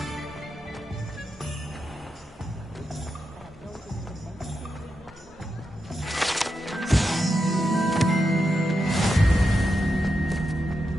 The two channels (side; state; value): both; normal; correlation 0.87